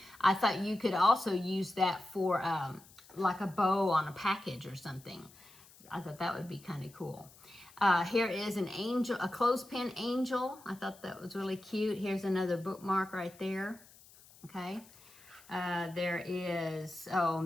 I thought you could also use that for like a bow on a package or something. I thought that would be kind of cool. Here is an angel, a clothespin angel. I thought that was really cute. Here's another bookmark right there. Okay. There is,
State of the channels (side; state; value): left; noise; hiss, 24 dB below the sound